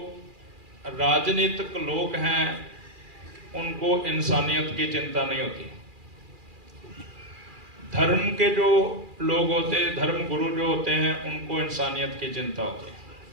राजनीतिक लोग हैं उनको इंसानियत की चिंता नहीं होती। धर्म के जो लोग होते हैं, धर्म गुरु जो होते हैं, उनको इंसानियत की चिंता होती है।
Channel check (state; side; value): late; left; 2.4 ms